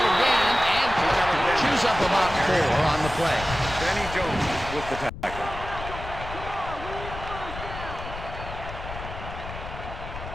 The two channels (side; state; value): left; noise; rumble, 10 dB below the sound